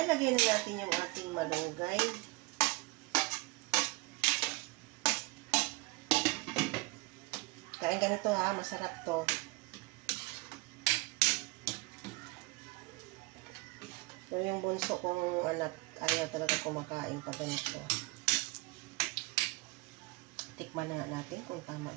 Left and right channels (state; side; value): quieter; left; 25.4 dB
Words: natin yung ating malunggay. Kain ganito ha, masarap to. Pero yung bunso kong anak, ayaw talaga kumakain pa ganito. Tikman na nga natin kung tama